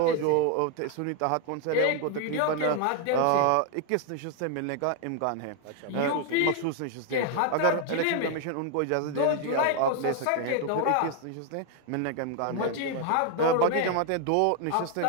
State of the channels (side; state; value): both; different; correlation 0.00